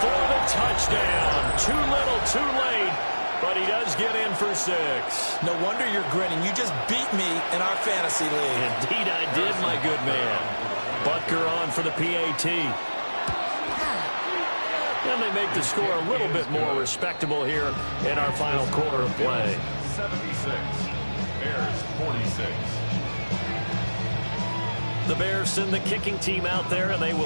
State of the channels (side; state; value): both; inverted; correlation -1.00